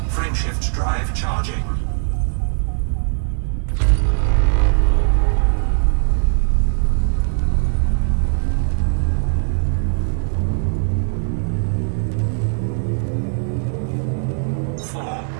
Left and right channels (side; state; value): left; silent; digital silence